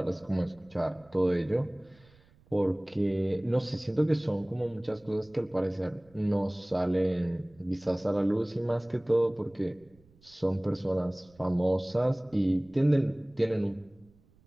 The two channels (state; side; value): noise; right; rumble, 29 dB below the sound